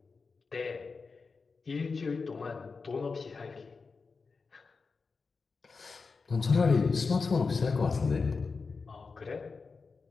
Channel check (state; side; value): quieter; right; 4.6 dB